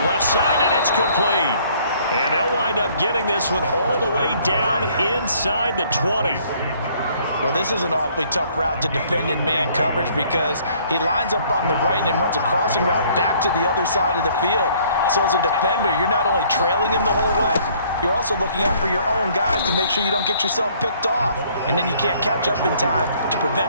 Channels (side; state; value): both; inverted; correlation -0.60